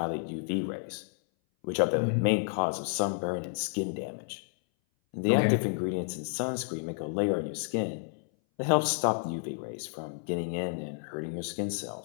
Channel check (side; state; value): right; silent; 57 dB below the other